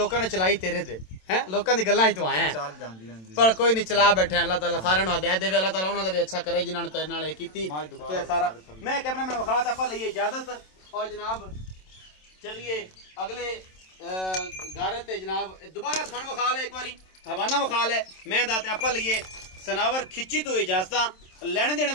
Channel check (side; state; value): right; late; 27 ms